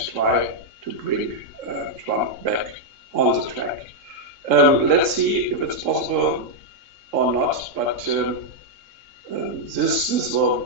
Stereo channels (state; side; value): late; left; 3.7 ms